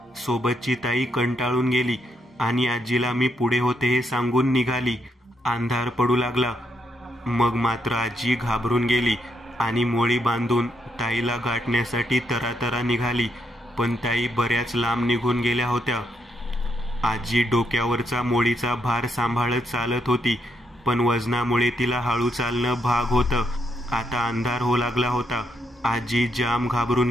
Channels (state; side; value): normal; both; correlation 0.78